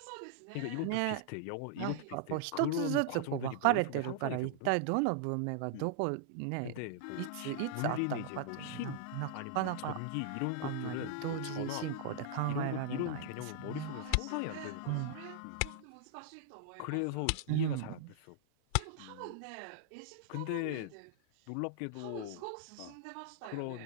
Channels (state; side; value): different; both; correlation -0.01